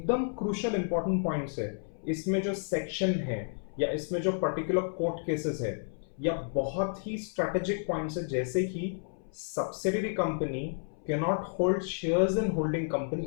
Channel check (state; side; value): silent; right; 57 dB below the other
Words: क्रूशियल इंपॉर्टेंट पॉइंट्स है, इसमें जो सेक्शन है या इसमें जो पर्टिकुलर कोर्ट केसेस है या बहुत ही स्ट्रेटेजिक पॉइंट्स है, जैसे कि subsidiary company can not hold shares in holding company